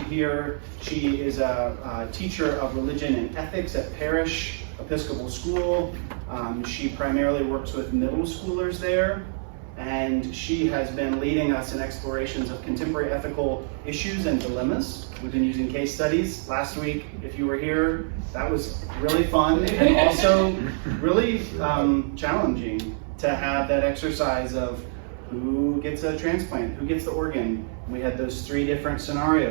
here. She is a teacher of religion and ethics at Parish Episcopal School. She primarily works with middle schoolers there, and she has been leading us in explorations of contemporary ethical issues and dilemmas. We've been using case studies. Last week, if you were here, that was really fun and also really challenging to have that exercise of who gets a transplant, who gets the organ. We had those 3 different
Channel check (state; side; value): silent; left; 61 dB below the other